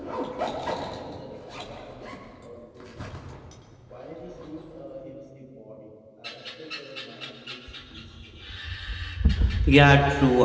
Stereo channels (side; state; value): both; identical; correlation 1.00